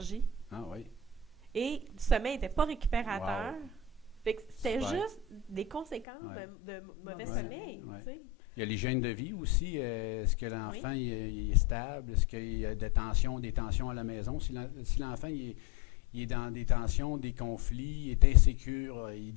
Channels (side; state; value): right; drops out; at 6.1 s